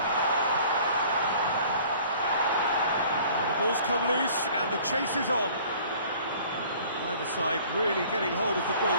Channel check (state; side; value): inverted; both; correlation -0.51